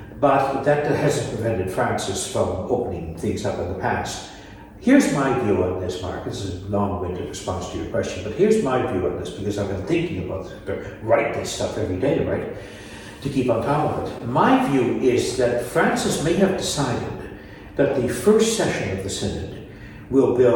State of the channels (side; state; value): both; identical; correlation 1.00